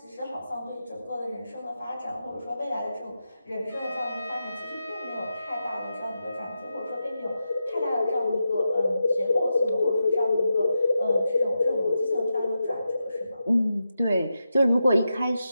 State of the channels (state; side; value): inverted; both; correlation -0.88